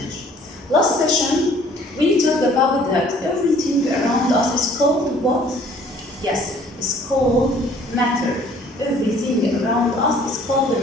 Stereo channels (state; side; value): normal; both; correlation 0.56